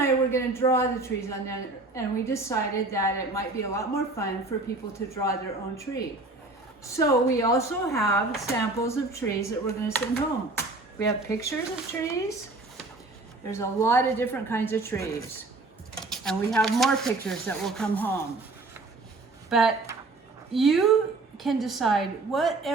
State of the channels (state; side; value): quieter; left; 3.2 dB